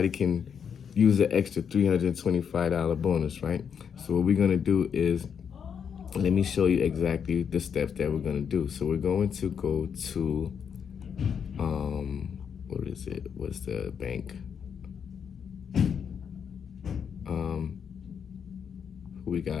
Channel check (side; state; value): right; quieter; 7.3 dB